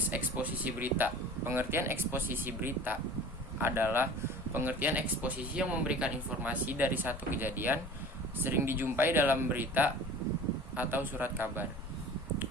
eksposisi berita. Pengertian eksposisi berita adalah pengertian eksposisi yang memberikan informasi dari satu kejadian, sering dijumpai dalam berita atau surat kabar.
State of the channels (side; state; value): both; normal; correlation 0.41